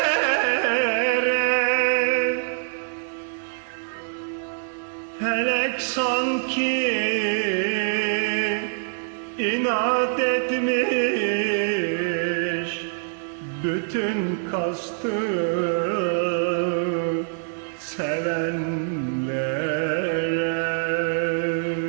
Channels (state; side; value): silent; left; 56 dB below the other